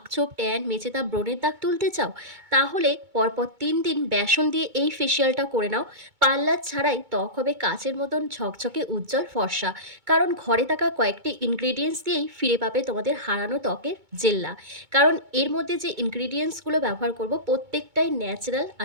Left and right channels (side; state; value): left; late; 2.2 ms